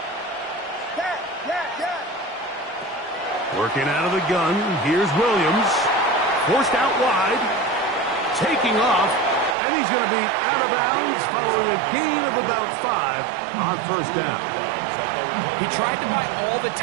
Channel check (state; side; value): drops out; left; at 9.6 s